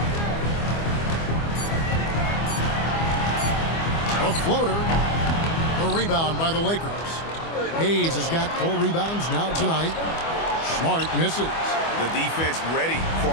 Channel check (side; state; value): right; late; 25 ms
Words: A floater. A rebound by the Lakers. Hayes has got 4 rebounds now tonight. Smart misses. The defense ready for